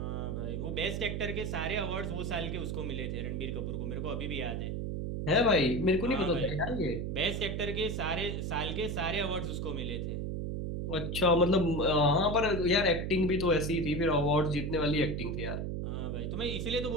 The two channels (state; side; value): noise; right; hum, 2 dB below the sound